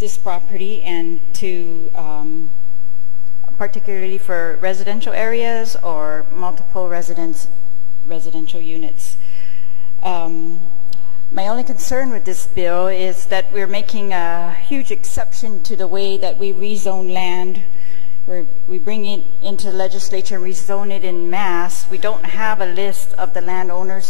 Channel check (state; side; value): quieter; right; 32.7 dB